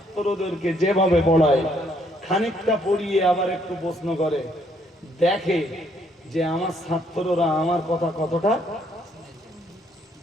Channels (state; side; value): normal; both; correlation 0.69